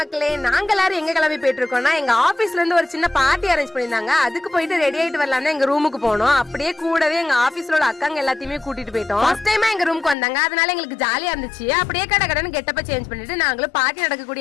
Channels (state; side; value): drops out; right; at 10.2 s